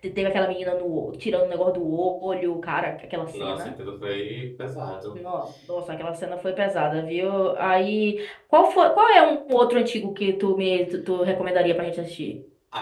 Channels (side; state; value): both; identical; correlation 1.00